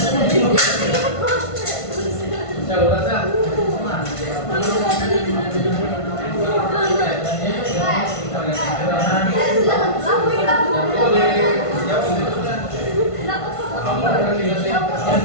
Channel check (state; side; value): late; right; 1.5 ms